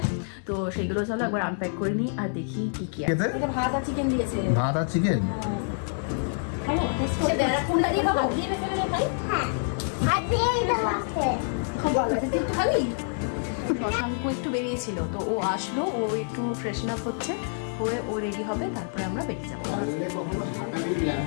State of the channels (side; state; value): right; silent; digital silence